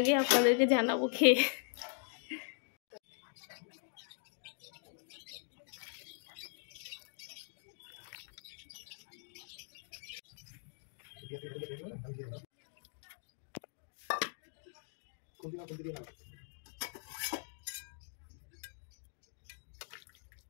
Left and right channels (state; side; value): silent; right; digital silence